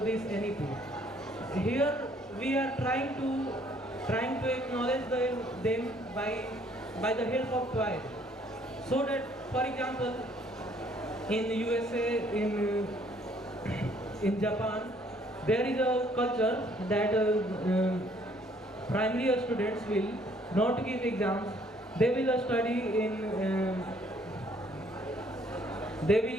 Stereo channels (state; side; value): normal; both; correlation 0.63